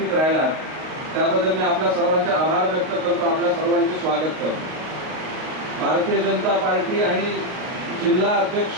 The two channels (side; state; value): left; late; 38 ms